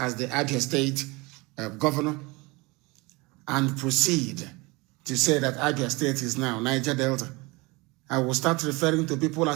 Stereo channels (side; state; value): left; quieter; 24.9 dB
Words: the Abia State governor, and proceed to say that Abia State is now Niger Delta, I will start referring to people